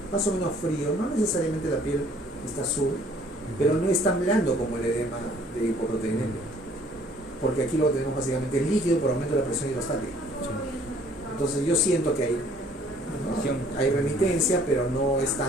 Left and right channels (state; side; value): normal; both; correlation 0.58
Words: más o menos frío, no necesariamente la piel está azul, pero no es tan blando como el edema de hipoproteinemia, porque aquí lo que tenemos básicamente es líquido por aumento de la presión hidrostática. Entonces yo siento que hay remitencia, pero no es